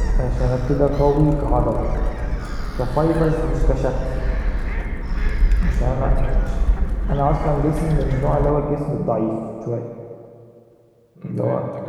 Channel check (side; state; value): both; identical; correlation 1.00